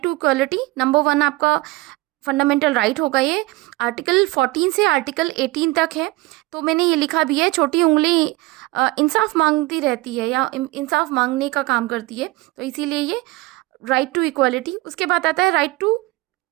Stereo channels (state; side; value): quieter; left; 20.7 dB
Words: टू इक्वलिटी। नंबर 1 आपका फंडामेंटल राइट होगा। ये आर्टिकल 14 से आर्टिकल 18 तक है। तो मैंने ये लिखा भी है, छोटी उंगली इंसाफ मांगती रहती है या इंसाफ मांगने का काम करती है, तो इसीलिए ये राइट टू इक्वलिटी। उसके बाद आता है राइट टू